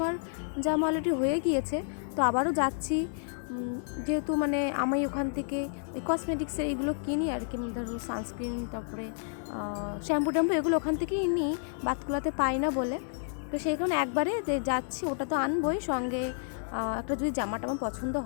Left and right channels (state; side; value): silent; right; digital silence